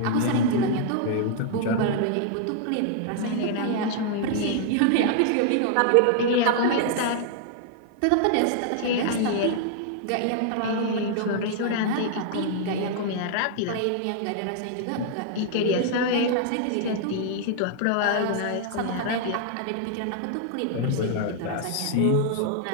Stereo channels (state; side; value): different; both; correlation -0.01